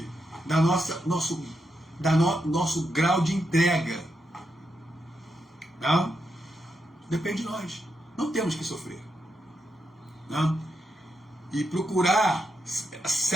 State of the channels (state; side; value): normal; both; correlation 0.83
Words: nosso grau de entrega. Não? Depende de nós. Não temos que sofrer. Não? E procurar se